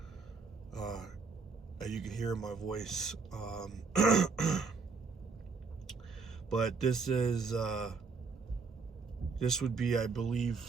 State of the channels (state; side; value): quieter; left; 4.8 dB